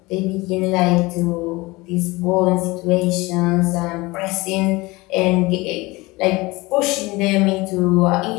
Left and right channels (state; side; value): quieter; right; 22.3 dB